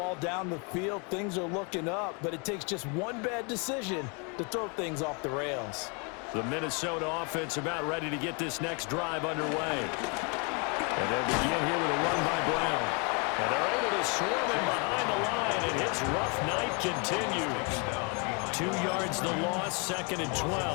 down the field. Things are looking up, but it takes just one bad decision to throw things off the rails. The Minnesota offense about ready to get this next drive underway. And they'll begin here with a run by Brown. And they're able to swarm him behind the line, and his rough night continues. 2 yards the loss, second and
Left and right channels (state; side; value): quieter; right; 34.2 dB